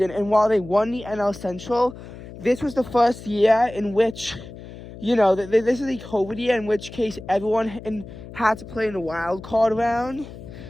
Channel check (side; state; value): left; noise; hum, 15 dB below the sound